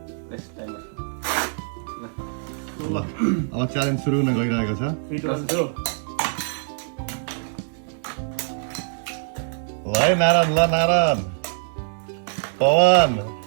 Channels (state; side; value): silent; left; 63 dB below the other